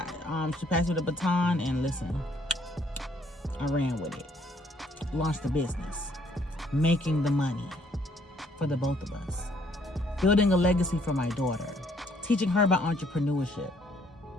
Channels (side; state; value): both; normal; correlation 0.65